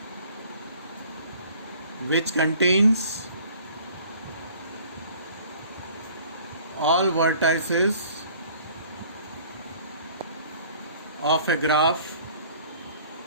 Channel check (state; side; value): inverted; both; correlation -0.52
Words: which contains all vertices of a graph